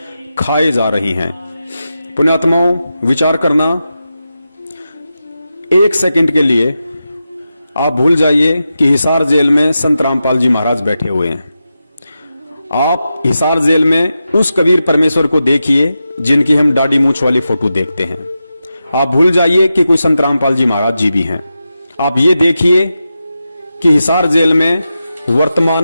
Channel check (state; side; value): inverted; both; correlation -0.90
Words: खाए जा रही हैं। पुण्यात्माओं, विचार करना, 1 सेकंड के लिए आप भूल जाइए कि हिसार जेल में संत रामपाल जी महाराज बैठे हुए हैं। आप हिसार जेल में उस कबीर परमेश्वर को देखिए जिनकी हम दाढ़ी मूंछ वाली फोटो देखते हैं। आप भूल जाइए कि कोई संत रामपाल जी महाराज जी भी हैं। आप ये देखिए कि हिसार जेल में वर्तमान